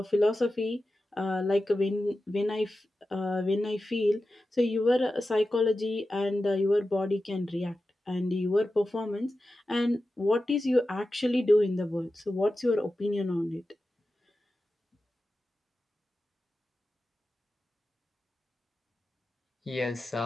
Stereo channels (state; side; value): normal; both; correlation 0.93